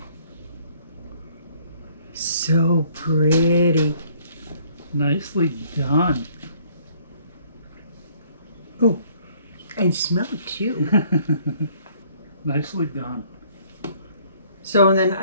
So pretty. Nicely done. Oh, and smell it too. Nicely done. So, and then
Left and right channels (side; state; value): both; inverted; correlation -0.61